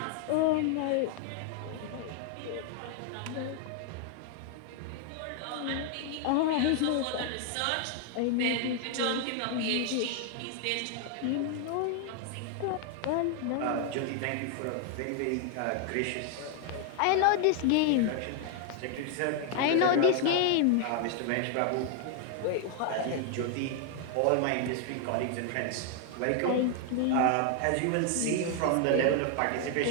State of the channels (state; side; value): different; both; correlation 0.00